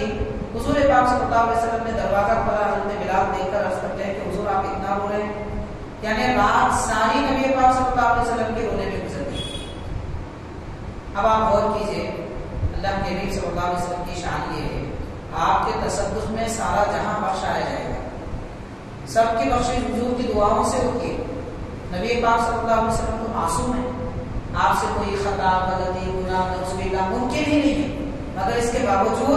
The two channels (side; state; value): both; identical; correlation 1.00